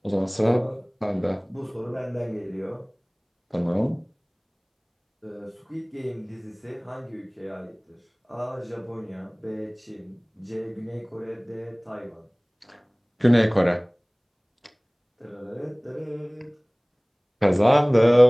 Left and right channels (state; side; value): identical; both; correlation 1.00